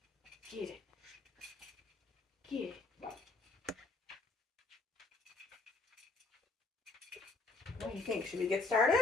Get it. Get it. What do you think? Should we get started?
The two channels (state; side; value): quieter; right; 3.5 dB